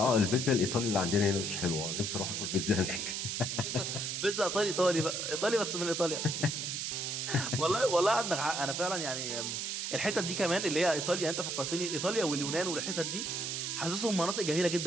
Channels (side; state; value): right; noise; hiss, 2 dB below the sound